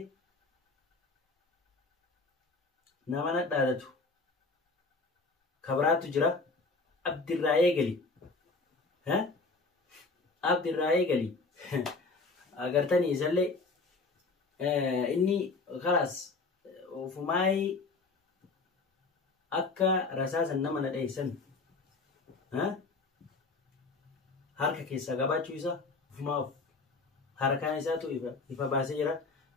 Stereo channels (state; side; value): quieter; right; 3.8 dB